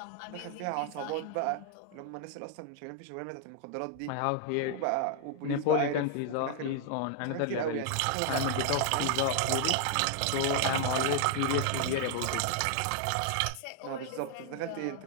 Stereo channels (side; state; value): both; different; correlation 0.00